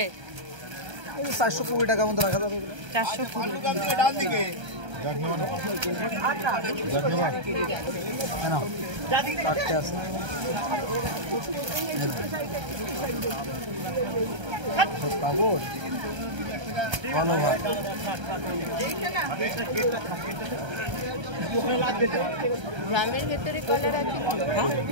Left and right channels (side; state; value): left; late; 1.3 ms